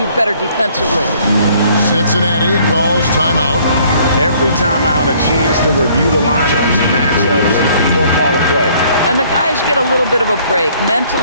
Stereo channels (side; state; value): both; inverted; correlation -0.60